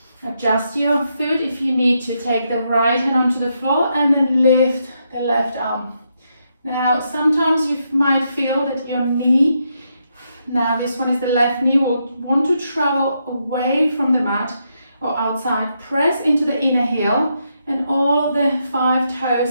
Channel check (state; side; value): inverted; both; correlation -0.80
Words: Adjust your foot if you need to. Take the right hand onto the floor and then lift the left arm. Now sometimes you might feel that your knee, now this one is the left knee, will want to travel away from the mat or outside. Press into the inner heel and all of the 5